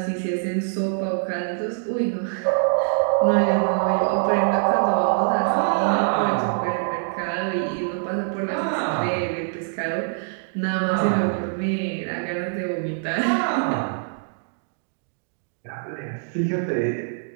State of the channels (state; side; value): silent; left; digital silence